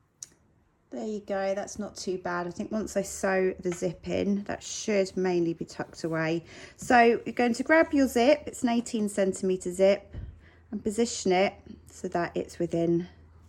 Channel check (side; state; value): both; identical; correlation 1.00